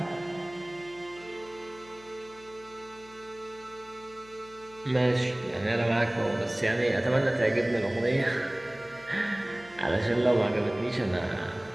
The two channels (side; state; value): left; noise; hum, 23 dB below the sound